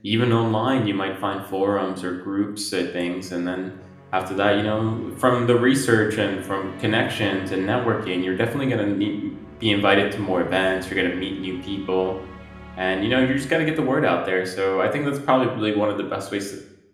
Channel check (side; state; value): both; identical; correlation 1.00